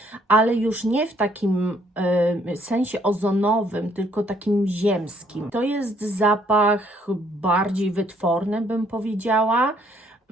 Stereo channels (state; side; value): normal; both; correlation 0.66